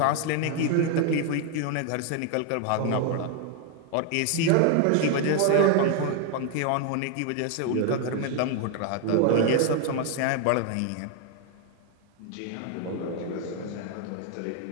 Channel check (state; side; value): different; both; correlation 0.01